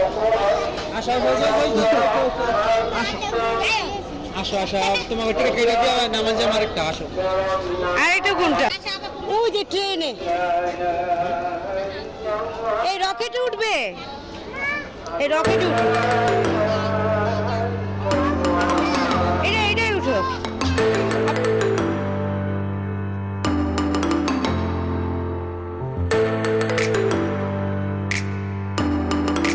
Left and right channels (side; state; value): both; identical; correlation 1.00